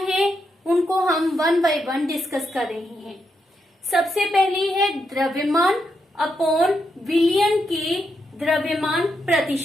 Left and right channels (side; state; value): both; normal; correlation 0.82